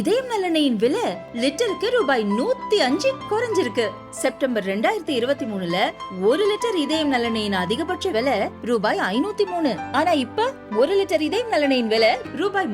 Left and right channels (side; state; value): both; identical; correlation 1.00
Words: நல்லெண்ணெயின் விலை லிட்டருக்கு ரூபாய் 105 குறைஞ்சிருக்கு. செப்டம்பர் 2023ல 1 லிட்டர் இதயம் நல்லெண்ணெயின் அதிகபட்ச விலை ரூபாய் 503. ஆனா இப்ப 1 லிட்டர் இதயம் நல்லெண்ணெயின் விலை ரூபாய்